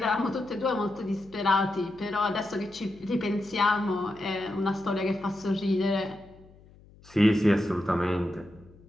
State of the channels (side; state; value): left; noise; hum, 25 dB below the sound